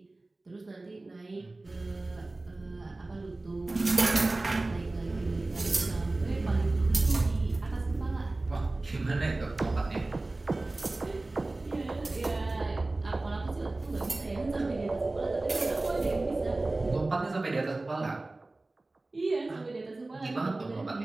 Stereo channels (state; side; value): quieter; left; 3.0 dB